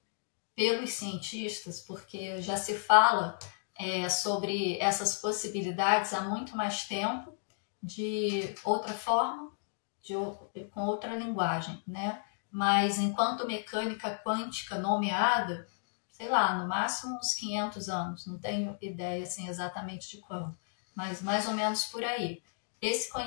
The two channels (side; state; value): right; silent; digital silence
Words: Pelos cientistas, porque já se fala sobre essas possibilidades há muito mais tempo, de outra forma, com outra linguagem, né? Mas enquanto mecânica quântica nomeada, sei lá, no máximo uns 500 anos, não tenho ideia assim, exatamente de quando, mas mais ou menos por aí. Esse